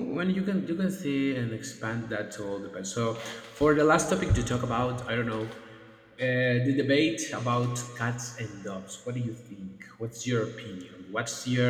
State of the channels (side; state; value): both; identical; correlation 1.00